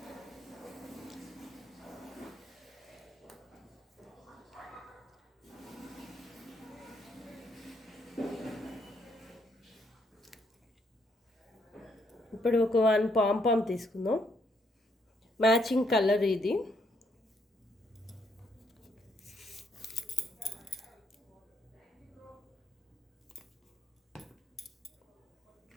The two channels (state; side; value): normal; both; correlation 0.73